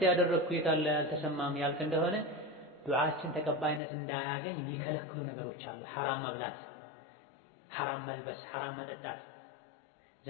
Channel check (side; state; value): right; drops out; at 3.8 s